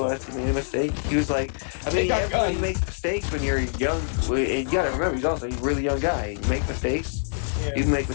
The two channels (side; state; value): right; silent; digital silence